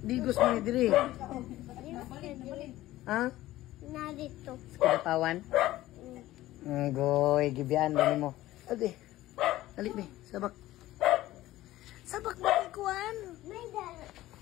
Digos mo ni Dre. Ha? Na dito. Sa Kidapawan? Goy, gibian ba ni mo? Ate. Dali be, sabak. Sabak mo ni Kuan. May dala.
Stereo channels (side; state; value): right; quieter; 15.9 dB